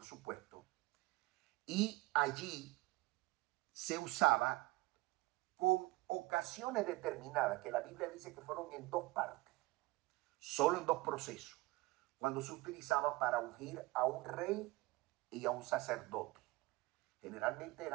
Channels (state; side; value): quieter; left; 21.4 dB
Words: supuesto, y allí se usaba con ocasiones determinadas, que la Biblia dice que fueron en 2 partes, solo en 2 procesos, cuando se utilizaba para ungir a un rey y a un sacerdote. Generalmente